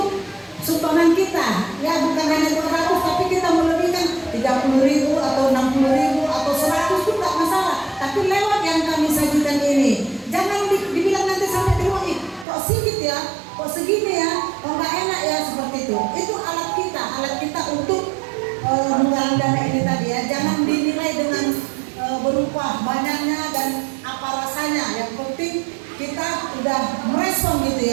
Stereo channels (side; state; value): left; drops out; at 12.5 s